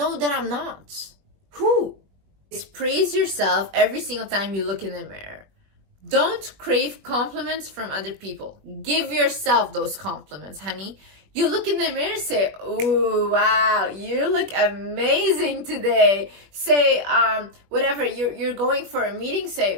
that I'm not? Who? Just praise yourself every single time you look in the mirror. Don't crave compliments from other people. Give yourself those compliments, honey. You look in the mirror, say, "Ooh, wow, you look amazing today." Say, whatever, you're going for a meeting,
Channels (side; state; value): left; late; 21 ms